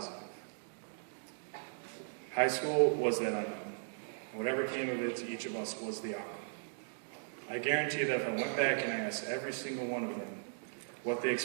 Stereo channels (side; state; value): left; silent; digital silence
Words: High school was that unknown. Whatever came of it to each of us was the outcome. I guarantee that if I went back and I asked every single one of them what they